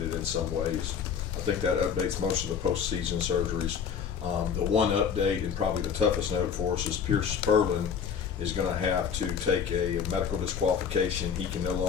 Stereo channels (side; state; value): right; quieter; 7.2 dB